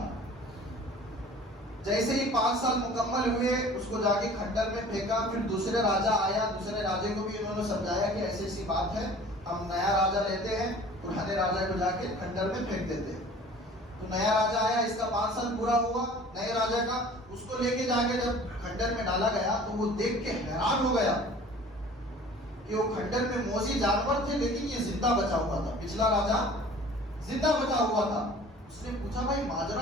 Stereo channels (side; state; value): both; normal; correlation 0.46